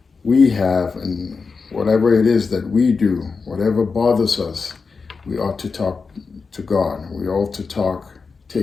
we have and whatever it is that we do, whatever bothers us, we ought to talk to God. We ought to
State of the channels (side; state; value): right; quieter; 4.8 dB